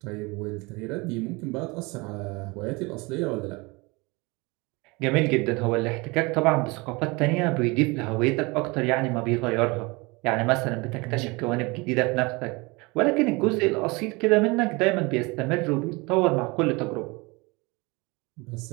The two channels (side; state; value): left; quieter; 25.8 dB